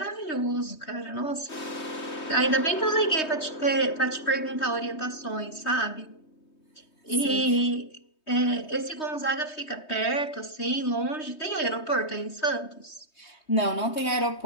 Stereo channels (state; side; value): late; right; 3.2 ms